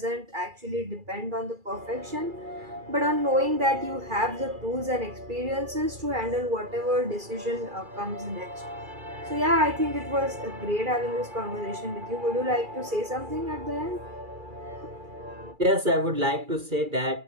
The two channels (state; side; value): late; left; 2.4 ms